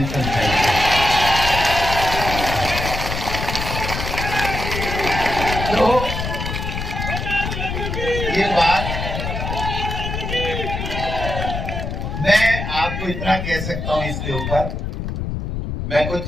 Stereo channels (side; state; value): left; noise; rumble, 4 dB below the sound